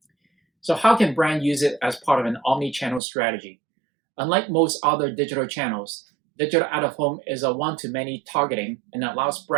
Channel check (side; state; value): left; drops out; at 3.0 s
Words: So how can brands use it as part of an omni-channel strategy? Unlike most other digital channels, digital out-of-home is a one-to-many targeting and allows